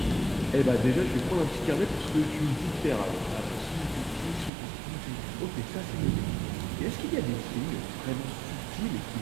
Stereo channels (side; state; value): left; drops out; at 4.5 s